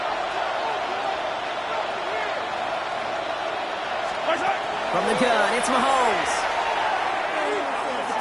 From the gun, it's Mahomes.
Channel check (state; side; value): identical; both; correlation 1.00